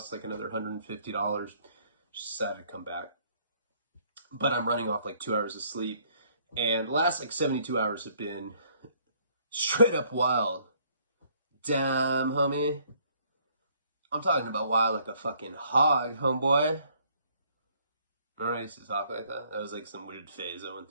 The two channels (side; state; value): both; inverted; correlation -0.64